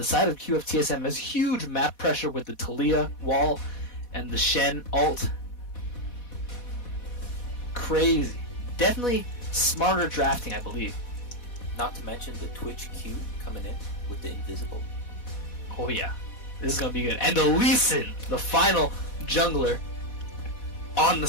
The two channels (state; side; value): late; right; 4.1 ms